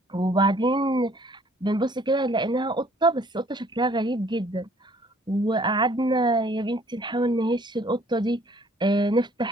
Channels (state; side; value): normal; both; correlation 0.59